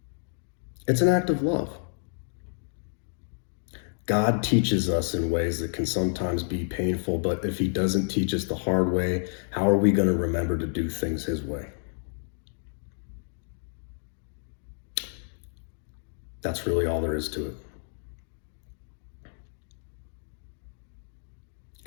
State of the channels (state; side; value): silent; right; digital silence